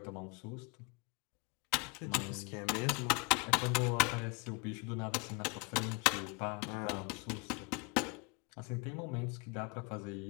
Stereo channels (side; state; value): right; quieter; 30.6 dB